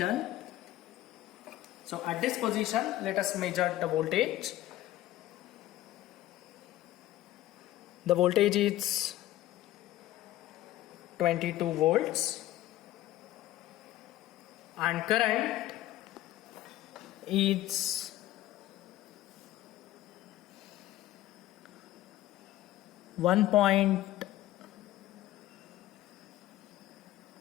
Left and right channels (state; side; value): quieter; right; 14.8 dB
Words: So at this position, let us measure the voltage. The voltage is 22 volts and current is